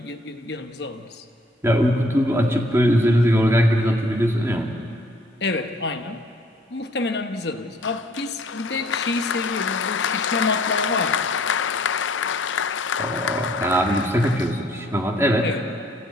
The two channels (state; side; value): normal; both; correlation 0.60